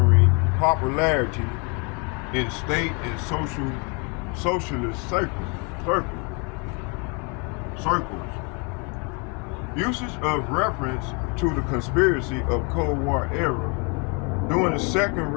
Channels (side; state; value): right; quieter; 33.4 dB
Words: popularity in state and socialist circles. Usage of reference to the conspiracy of Cold War era during the Second